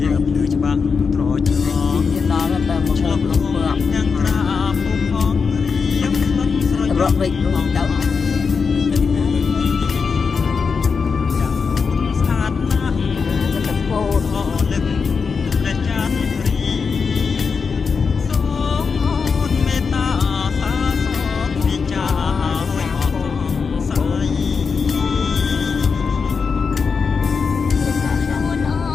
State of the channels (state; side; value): quieter; right; 5.4 dB